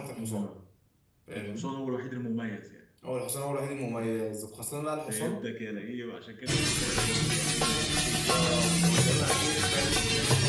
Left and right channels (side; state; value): both; identical; correlation 1.00